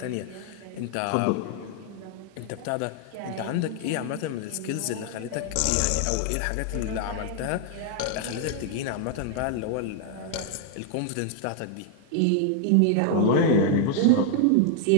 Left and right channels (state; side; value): different; both; correlation 0.00